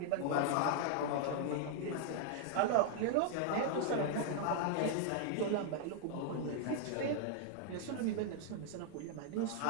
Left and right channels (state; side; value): different; both; correlation 0.00